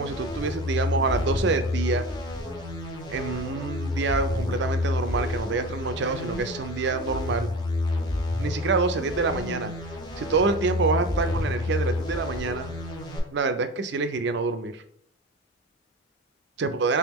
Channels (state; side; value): normal; both; correlation 0.31